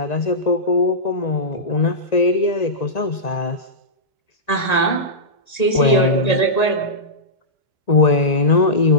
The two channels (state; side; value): late; right; 1.9 ms